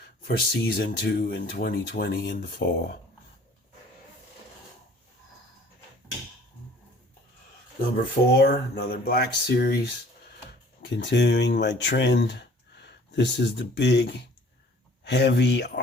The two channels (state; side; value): normal; both; correlation 0.51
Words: for season 2 in 2020 in the fall. Number 4, another Black Series. Continuing my trend. This is the big, heavy